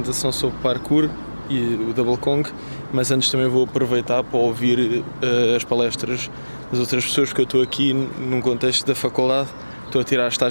sobre parkour e o Double Kong, mas antes também vou aproveitar para ouvir as palestras das outras pessoas, porque eu estou aqui num contexto da faculdade, estou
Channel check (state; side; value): inverted; both; correlation -1.00